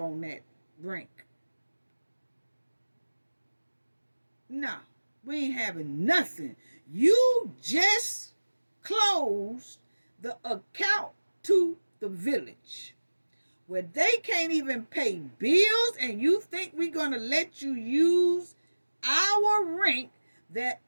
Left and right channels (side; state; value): both; inverted; correlation -1.00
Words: that rink. No, we ain't having nothing. You just closed the account to the village, where they can't even pay bills, and you think we're going to let you use our rent that